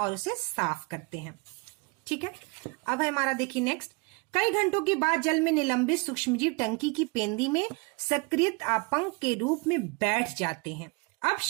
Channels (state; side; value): quieter; left; 29.7 dB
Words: उसे साफ करते हैं। ठीक है, अब है हमारा देखिए नेक्स्ट, कई घंटों के बाद जल में निलंबित सूक्ष्मजीव टंकी की पेंदी में सक्रिय आपंक के रूप में बैठ जाते हैं। अब